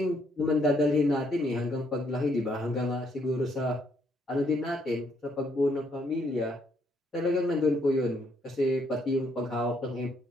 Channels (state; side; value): normal; both; correlation 0.71